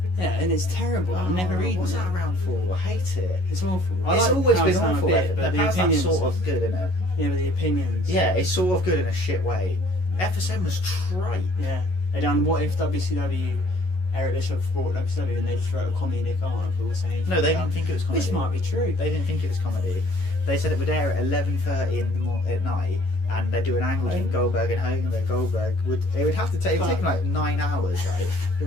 Yeah, and it's terrible. I'm never reading What's it. that around for? I hate it. It's awful. It's like always Power been Slam a awful. bit, The but the Power Slam's opinions. sort of good, isn't it? Yeah, but the opinions. Yeah, it's sort of good in a shit way. FSM was trite. Yeah. They done what if WCW, Eric Bischoff bought WCW and they just wrote a comedic article saying. No, they didn't think it was comedy. This might be true. They didn't think it was comedy. They said it would air at 11:30 at night, and they'd do an angle between Goldberg and Hogan. Where Goldberg would have to take like 9 hours. Right? It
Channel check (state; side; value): late; right; 11 ms